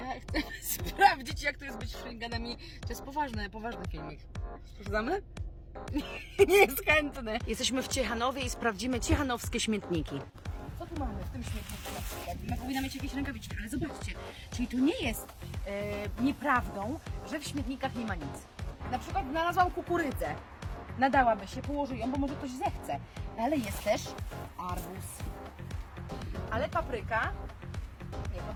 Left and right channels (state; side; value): identical; both; correlation 1.00